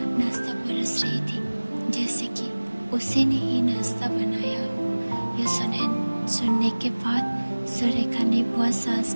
नाश्ता परस रही थी, जैसे कि उसी ने ही नाश्ता बनाया हो। यह सुनने के बाद सुरेखा ने बुआ सास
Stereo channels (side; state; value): both; inverted; correlation -1.00